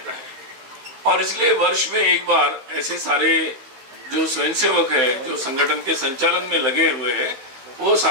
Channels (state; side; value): late; left; 15 ms